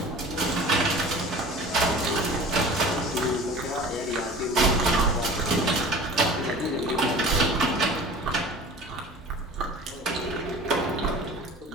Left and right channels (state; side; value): normal; both; correlation 0.41